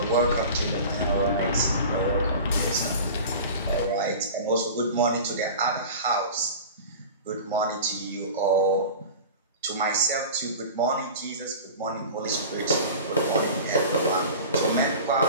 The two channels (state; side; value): inverted; both; correlation -0.35